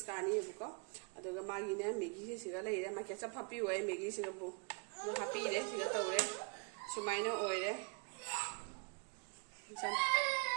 कानीबको अदुगा मागिने मैगी सिगा लेरे मा केचप हापी होय मैगी सिगा बु हापी रे सिगा तौरे सुमाइना ओइरे सन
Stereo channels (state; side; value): quieter; left; 36.6 dB